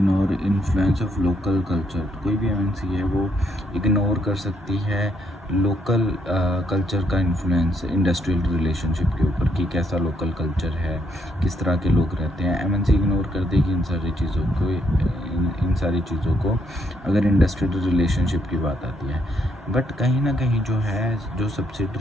influence of local culture. कोई भी एमएनसी है वो इग्नोर कर सकती है लोकल कल्चर का इन्फ्लुएंस इंडस्ट्रियल रिलेशनशिप के ऊपर, कि कैसा लोकल कल्चर है, किस तरह के लोग रहते हैं। एमएनसी इग्नोर कर देगी इन सारी चीज़ों को अगर इंडस्ट्रियल रिलेशनशिप की बात आती है। बट कहीं ना कहीं जो है, जो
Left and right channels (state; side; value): normal; both; correlation 0.74